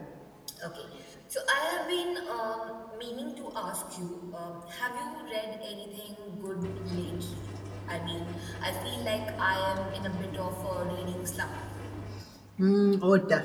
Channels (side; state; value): both; identical; correlation 1.00